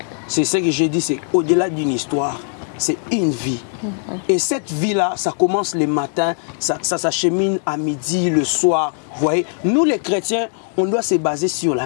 c'est ce que j'ai dit, c'est au-delà d'une histoire, c'est une vie. Et cette vie-là, ça commence le matin, ça s'achemine à midi, le soir. Vous voyez, nous les chrétiens, on doit se baser sur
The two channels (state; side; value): silent; right; 66 dB below the other